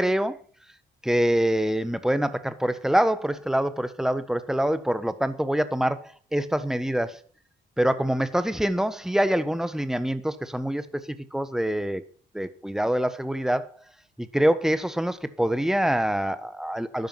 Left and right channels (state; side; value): normal; both; correlation 0.96